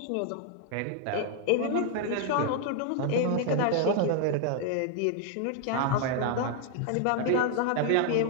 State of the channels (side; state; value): both; different; correlation 0.00